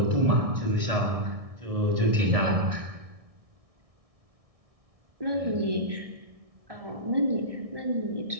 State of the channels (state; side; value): late; left; 1.6 ms